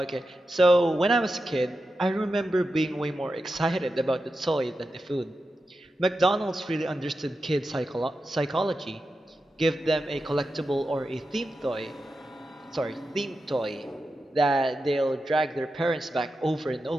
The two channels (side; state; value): both; normal; correlation 0.90